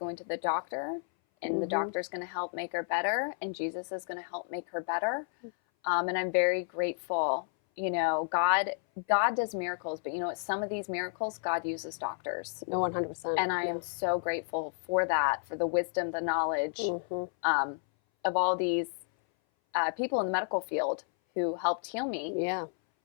to the doctor, and the doctor's going to help make her better, and Jesus is going to help make her better. And I'm very grateful. You know, God does miracles, but you know what? Some of these miracles, God uses doctors. No, 100%. And I am so grateful for that, for the wisdom, the knowledge of all these people in the medical field who helped heal me. Yeah.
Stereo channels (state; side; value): silent; right; 57 dB below the other